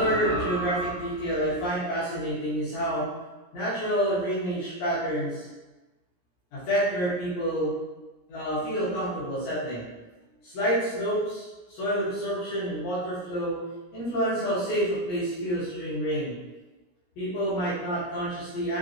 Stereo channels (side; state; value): right; late; 17 ms